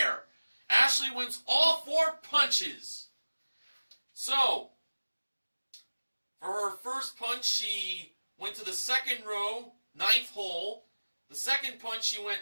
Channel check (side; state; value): both; inverted; correlation -1.00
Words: Ashley wins all 4 punches. So, for her first punch, she went to the second row, 9th hole. The second punch, she went